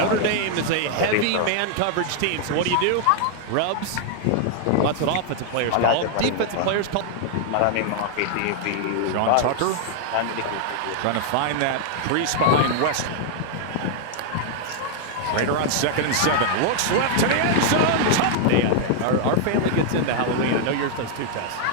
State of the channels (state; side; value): different; both; correlation 0.00